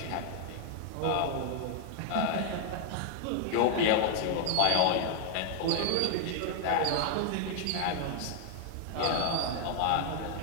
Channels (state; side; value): different; both; correlation 0.00